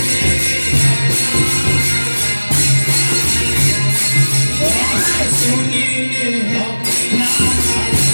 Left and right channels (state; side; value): inverted; both; correlation -1.00